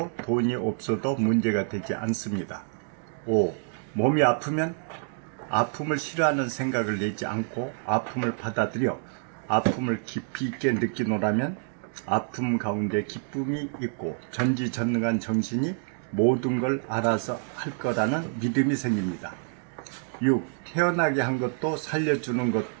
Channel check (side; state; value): left; silent; 60 dB below the other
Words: 돈이 없어도 문제가 되지 않습니다. 5. 몸이 아프면 아픔을 싫어하는 생각을 내지 않고 아픔을 받아들여 아픔을 깊이 있게 느끼노라면 아픔 가운데 기쁨이 있고 전지전능한 정신이 모든 걸 알아서 할 거라는 믿음이 생깁니다. 6. 태어나게 한 것도 살려주는